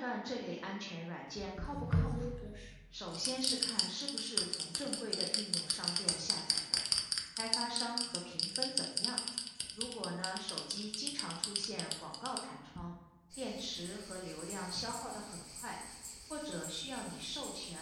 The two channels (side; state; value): both; identical; correlation 1.00